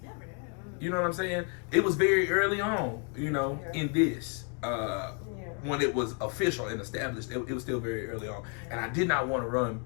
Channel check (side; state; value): right; quieter; 39.2 dB